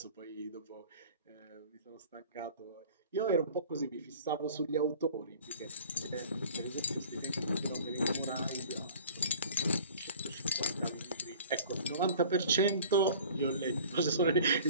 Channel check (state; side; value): inverted; both; correlation -0.46